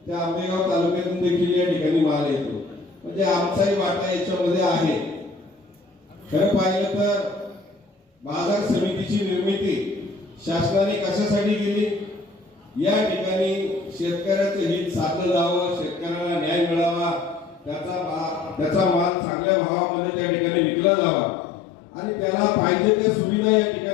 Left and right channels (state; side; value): quieter; right; 3.8 dB